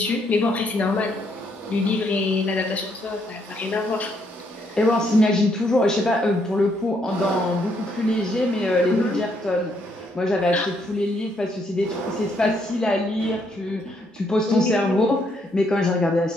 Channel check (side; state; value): both; normal; correlation 0.73